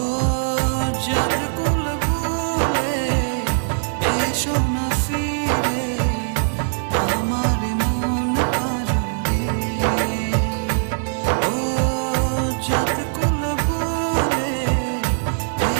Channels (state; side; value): silent; left; digital silence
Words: জাত কুল ভুলে এসো না ফিরে আমার মন পাজরে। ও জাত কুল ভুলে